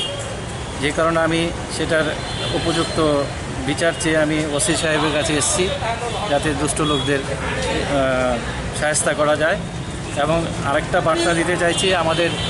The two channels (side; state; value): both; identical; correlation 1.00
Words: যে কারণে আমি সেটার উপযুক্ত বিচার চেয়ে আমি ওসি সাহেবের কাছে এসেছি, যাতে দুষ্ট লোকদের সহায়তা করা যায়। এবং আরেকটা বার্তা দিতে চাইছি আমাদের